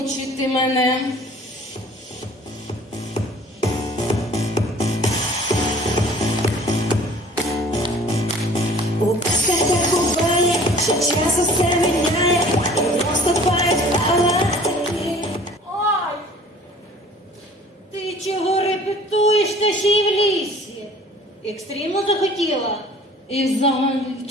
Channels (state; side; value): normal; both; correlation 0.49